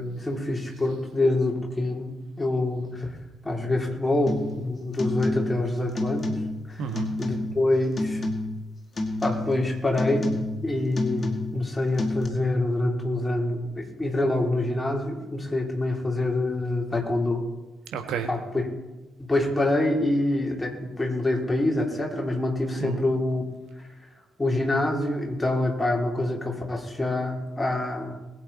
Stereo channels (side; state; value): both; normal; correlation 0.87